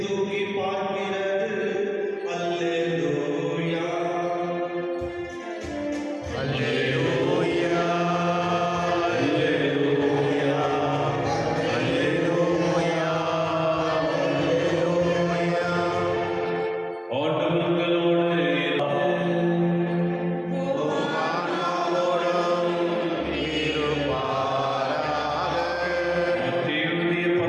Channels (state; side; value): identical; both; correlation 1.00